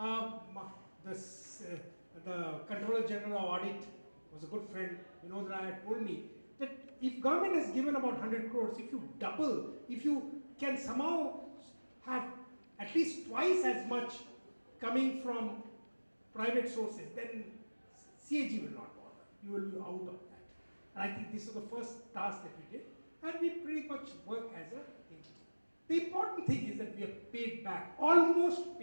the Controller General of Audit was a good friend, Vinod told me that if government has given about 100 crores, if you double, if you can somehow have at least twice as much coming from private sources, then CAG will not bother. You will be out of that. And I think this is the first task that we did, and we pretty much work as an entity. The important thing is that we have paid back, almost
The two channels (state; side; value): inverted; both; correlation -1.00